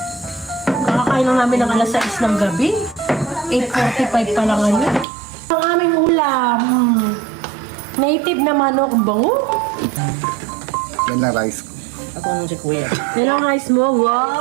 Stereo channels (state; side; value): drops out; left; at 5.1 s